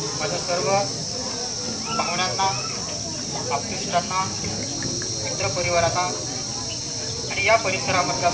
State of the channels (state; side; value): identical; both; correlation 1.00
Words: माझ्या सर्व पाहुण्यांना, आप्तेष्टांना, मित्रपरिवारांना आणि या परिसरामधल्या